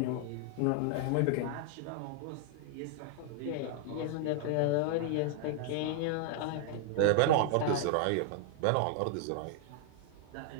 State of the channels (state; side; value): different; both; correlation 0.00